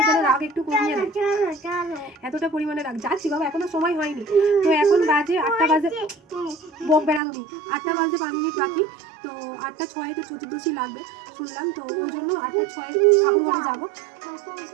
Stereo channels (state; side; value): drops out; left; at 7.2 s